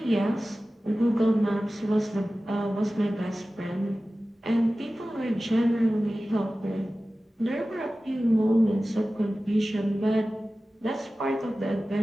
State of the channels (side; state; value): both; normal; correlation 0.96